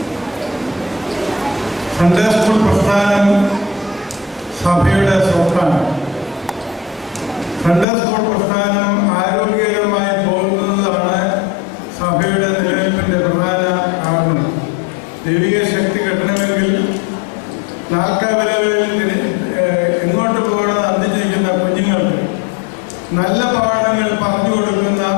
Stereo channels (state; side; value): drops out; right; at 7.9 s